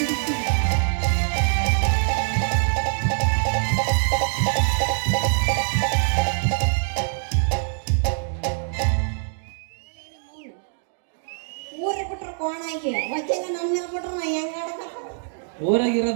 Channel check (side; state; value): left; silent; digital silence